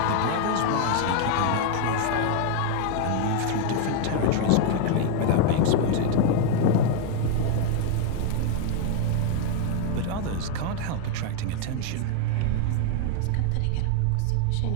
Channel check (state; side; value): different; both; correlation 0.01